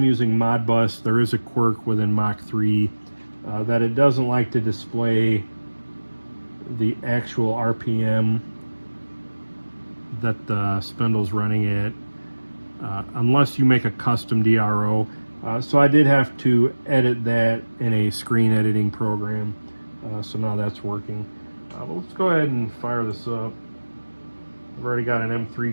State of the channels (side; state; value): both; inverted; correlation -1.00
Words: using Modbus, there is a quirk within Mach 3 that it doesn't like to display the actual RPM that the spindle's running at unless you make a custom DRO. So I did have to edit that in a screen editing program. So now that's working. But let's go ahead and fire this up. I've already got an